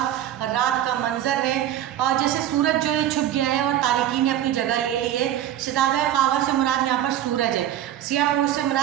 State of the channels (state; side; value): quieter; left; 11.7 dB